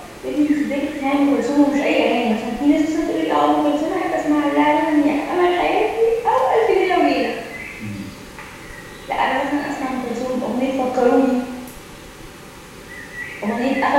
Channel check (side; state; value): both; identical; correlation 1.00